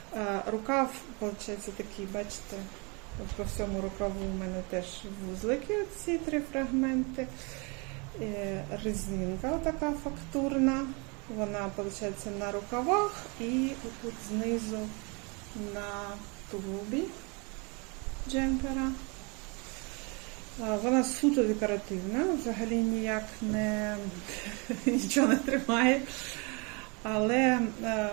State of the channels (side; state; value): left; quieter; 31.2 dB